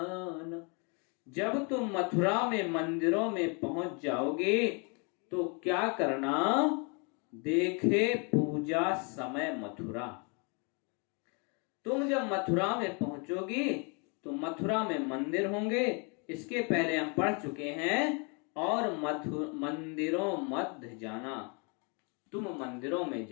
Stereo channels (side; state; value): right; quieter; 34.4 dB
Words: जब तुम मथुरा में मंदिरों में पहुंच जाओगे तो क्या करना? देखे पूजा समय मथुरा। तुम जब मथुरा में पहुंचोगी तो मथुरा में मंदिर होंगे। इसके पहले हम पढ़ चुके हैं। और मंदिरों मध्य जाना, तुम मंदिरों में